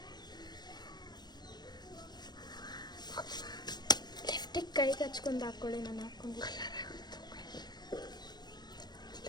ಲಿಫ್ಟಿಗೆ ಕೈಗೆ ಹಚ್ಕೊಂಡು ಹಾಕ್ಕೊಳ್ಳಿ. ನಾನು ಹಾಕ್ಕೊಂಡು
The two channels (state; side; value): late; right; 0.20 ms